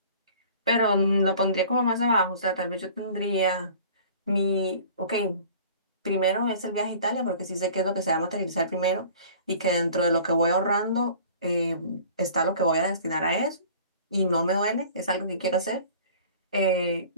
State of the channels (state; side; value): inverted; both; correlation -0.46